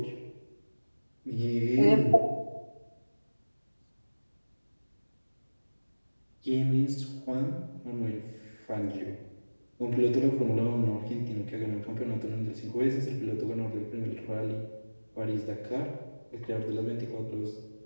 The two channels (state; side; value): inverted; both; correlation -1.00